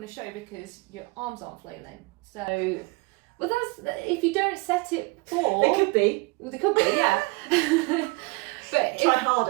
to show because your arms aren't flailing. So, well, that's if you don't set it for. They could be. Well, they could be, yeah. But try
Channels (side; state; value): left; quieter; 26.9 dB